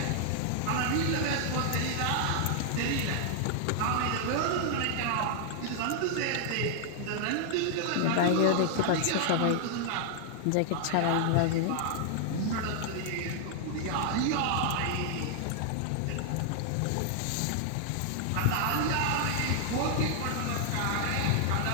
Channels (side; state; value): both; different; correlation 0.00